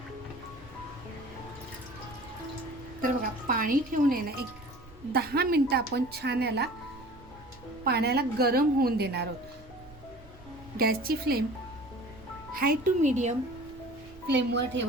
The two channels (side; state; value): right; noise; rumble, 21 dB below the sound